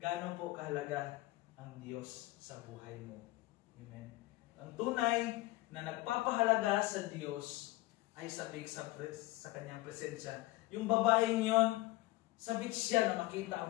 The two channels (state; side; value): quieter; right; 19.3 dB